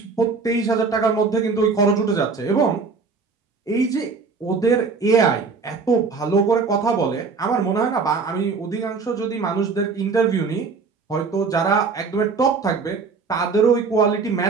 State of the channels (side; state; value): left; quieter; 4.7 dB